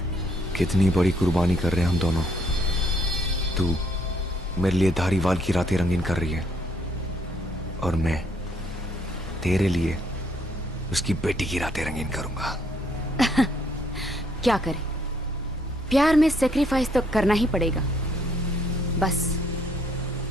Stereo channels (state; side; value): normal; both; correlation 0.68